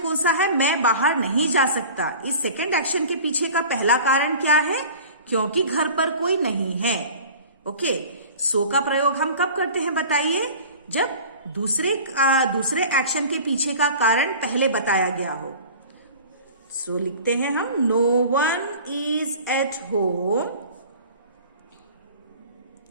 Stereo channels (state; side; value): inverted; both; correlation -0.41